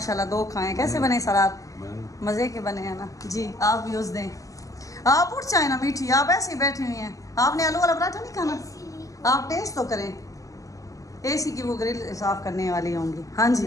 2 खाए। कैसे बने सलार? मज़े के बने हैं ना जी। आप भी उस दें, आप उठ जाए ना मीठी, आप ऐसे ही बैठी हुई हैं। आपने आलू वाला पराठा नहीं खाना? आप टेस्ट तो करें। एसी की वो ग्रिल साफ करने वाली होंगी। हाँ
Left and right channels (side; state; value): right; late; 0.16 ms